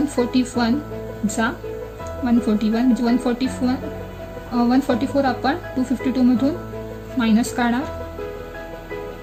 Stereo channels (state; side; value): identical; both; correlation 1.00